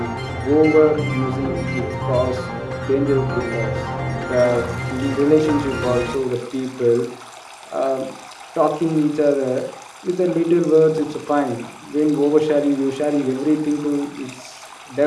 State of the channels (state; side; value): identical; both; correlation 1.00